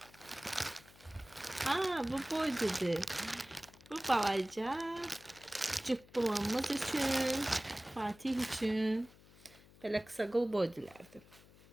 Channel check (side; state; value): left; noise; hum, 24 dB below the sound